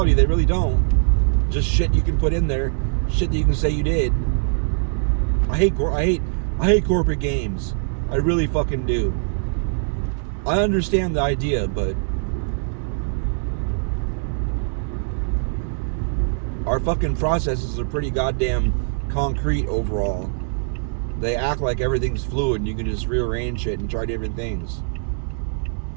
they really don't. Just shit you can put in there. Shit that you can say you did. I hate corporate games. I really fucking do. I understand the idea, but our fucking processes are pretty goddamn concrete overall. They act like everything's fluid and you can just rearrange shit and try different things.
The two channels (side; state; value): left; silent; digital silence